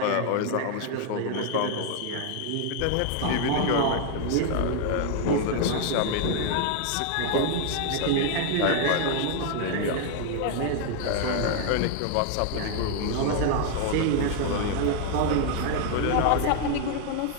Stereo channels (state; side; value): different; both; correlation 0.00